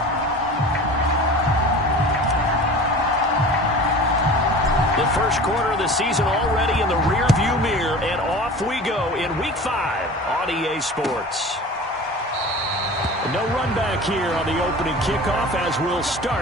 The first quarter of the season already in the rearview mirror, and off we go in Week 5 on EA Sports. No run back here on the opening kickoff as we'll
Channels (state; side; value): normal; both; correlation 0.38